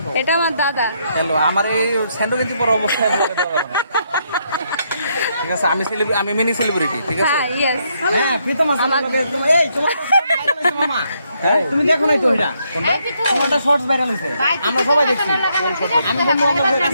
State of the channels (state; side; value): inverted; both; correlation -0.75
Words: এটা আমার দাদা। হ্যালো, আমার এই স্যান্ডো কিন্তু পর অবস্থায় ব্লগে দেওয়া যাবে না। ঠিক আছে, আমি মিনি সেলিব্রিটি, ঠিক আছে। হ্যাঁ, ইয়েস। হ্যাঁ, প্রীতম আমার এই তোমার মামা, তুমি দেখো না তো এটা তোমারটা শর্টস ভাইরাল হইছে, আমরা সবাই দেখছি। আমি বন্ধু বান্ধবের